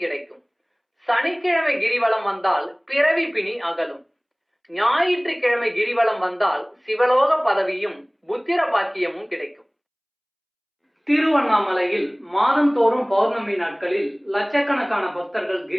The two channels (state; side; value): identical; both; correlation 1.00